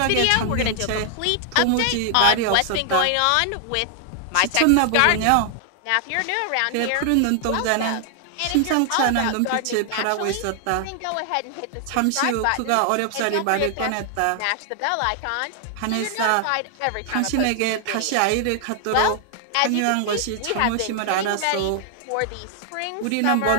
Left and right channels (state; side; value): different; both; correlation 0.00